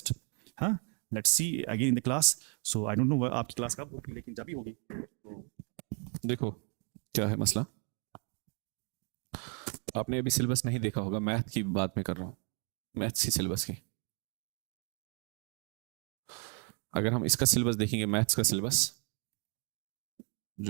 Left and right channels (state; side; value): quieter; left; 34.8 dB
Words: हाँ let's see again in the class so I don't know आपकी क्लास कब होगी लेकिन जब भी होगी देखो क्या है मसला, आपने अभी सिलेबस नहीं देखा होगा, मैथ की बात मैं कर रहा हूँ, मैथ्स की सिलेबस की। अगर हम इसका सिलेबस देखेंगे, मैथ्स का सिलेबस